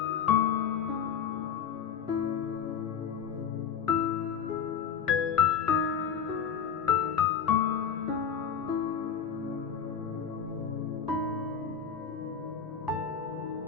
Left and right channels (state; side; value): quieter; right; 7.3 dB